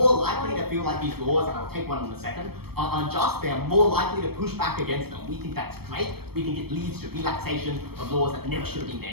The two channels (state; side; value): late; left; 0.96 ms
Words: likely to feel like these laws, and I'll take one in a second, are unjust. They are more likely to push back against them. We think that's great. We think it leads to relaxation of laws that never should have been